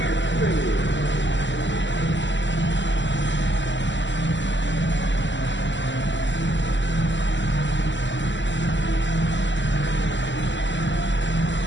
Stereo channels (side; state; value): right; late; 0.54 ms